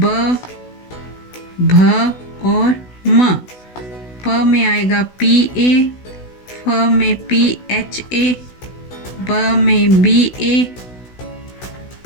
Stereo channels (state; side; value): late; right; 16 ms